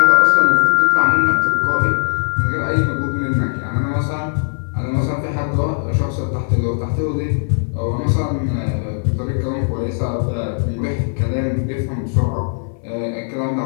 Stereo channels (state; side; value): silent; right; 65 dB below the other